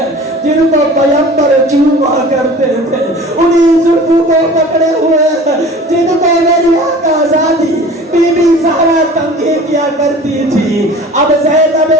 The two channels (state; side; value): normal; both; correlation 0.43